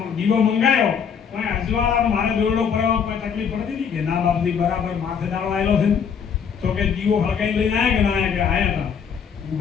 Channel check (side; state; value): right; quieter; 7.0 dB